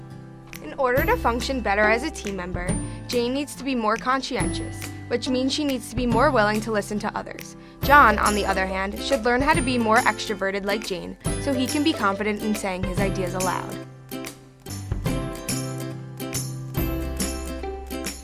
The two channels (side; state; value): both; identical; correlation 1.00